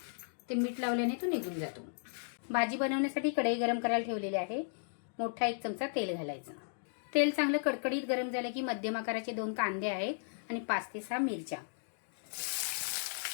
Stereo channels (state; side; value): silent; right; digital silence